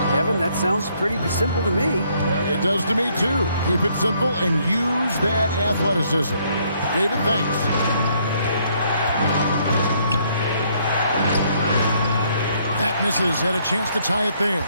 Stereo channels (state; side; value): inverted; both; correlation -0.68